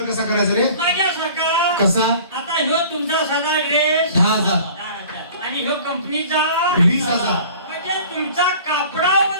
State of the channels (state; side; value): inverted; both; correlation -0.46